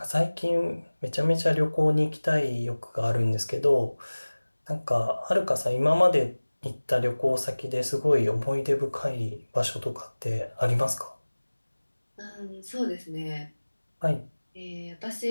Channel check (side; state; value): both; inverted; correlation -1.00